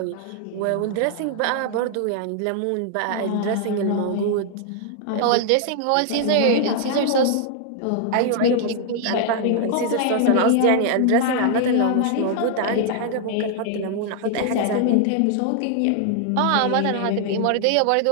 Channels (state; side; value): different; both; correlation 0.00